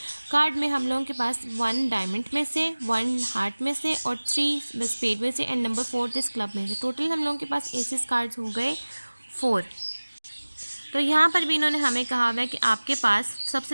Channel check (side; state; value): both; inverted; correlation -1.00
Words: कार्ड में हम लोगों के पास 1 डायमंड में से, 1 हार्ट में से और 3 स्पेड में से एंड नंबर 4 इस क्लब में से। टोटल हम लोगों के पास एसेस कार्ड्स हो गए 4। तो यहाँ पर भी इन्होंने हमें कहा हुआ है कि आपके पास